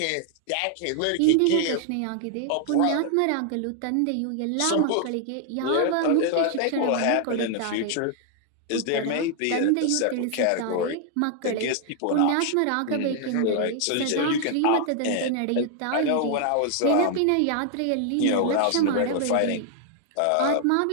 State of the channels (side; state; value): both; different; correlation 0.00